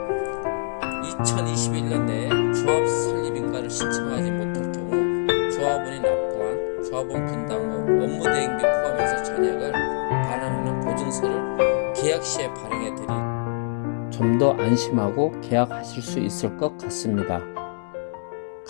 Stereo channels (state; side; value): silent; right; digital silence